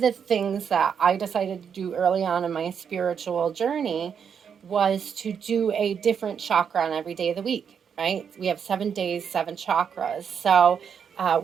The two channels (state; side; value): quieter; left; 7.3 dB